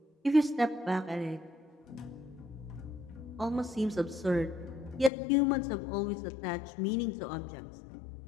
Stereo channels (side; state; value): right; drops out; at 5.1 s